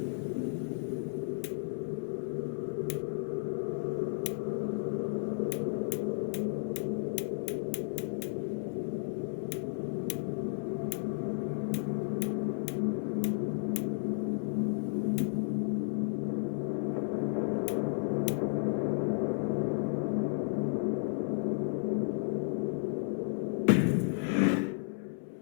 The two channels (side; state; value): right; silent; 56 dB below the other